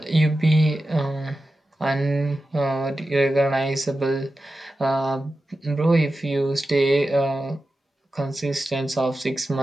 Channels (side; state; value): both; normal; correlation 0.92